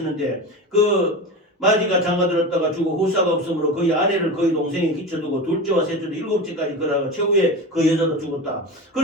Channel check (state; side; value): normal; both; correlation 0.26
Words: 그 마지가 장가들었다가 죽어 후사가 없으므로 그의 아내를 그의 동생에 끼쳐두고 둘째와 셋째도 7째까지 그러고 최후에 그 여자도 죽었다.